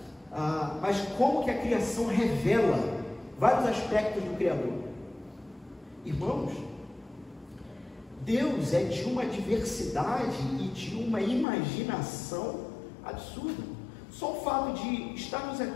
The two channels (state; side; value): drops out; right; at 11.5 s